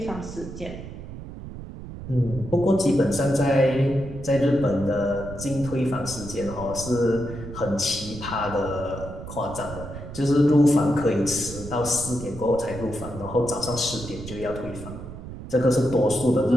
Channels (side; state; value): right; noise; rumble, 11 dB below the sound